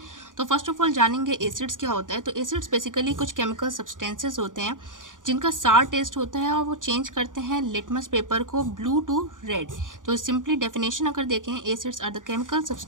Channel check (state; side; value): late; left; 0.88 ms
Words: तो फर्स्ट ऑफ ऑल जानेंगे एसिड्स क्या होता है। तो एसिड्स बेसिकली कुछ केमिकल सब्सटेंसेस होते हैं जिनका सार टेस्ट होता है और वो चेंज करते हैं लिटमस पेपर को ब्लू टू रेड। तो सिंपली डेफिनेशन अगर देखें, acids are the chemical